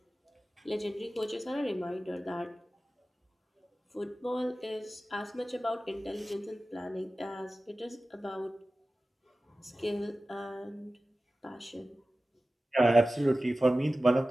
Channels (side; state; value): both; normal; correlation 0.96